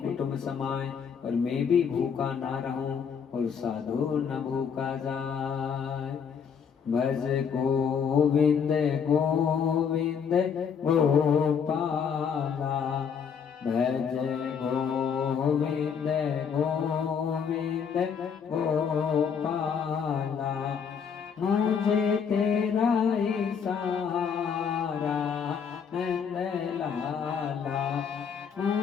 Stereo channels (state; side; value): quieter; right; 6.9 dB